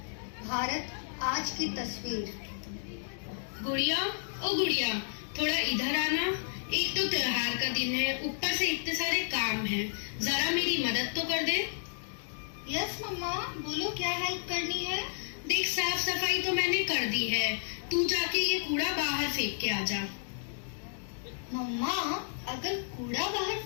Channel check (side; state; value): right; silent; digital silence